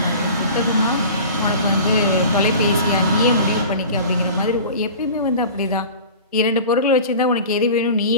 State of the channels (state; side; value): inverted; both; correlation -0.38